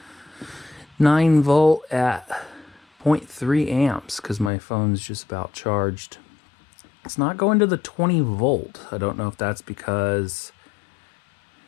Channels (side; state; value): right; drops out; at 4.5 s